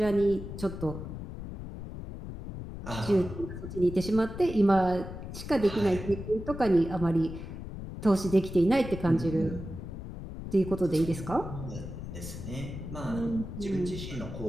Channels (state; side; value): noise; left; rumble, 9 dB below the sound